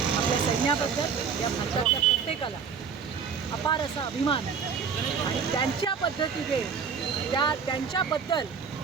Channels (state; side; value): quieter; left; 6.4 dB